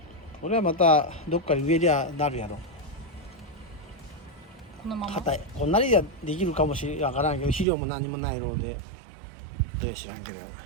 これはまたどっかに植えりゃなるやろ。このまま？硬い。こんなにはできるかもしれんからんけど、肥料も何もないので、知らんけど、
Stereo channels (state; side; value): drops out; left; at 7.7 s